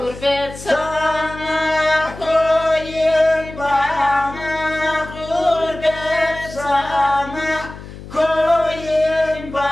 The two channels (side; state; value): left; noise; hum, 14 dB below the sound